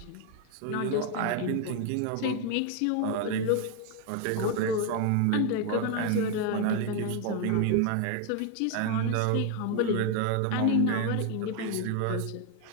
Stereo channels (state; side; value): different; both; correlation 0.01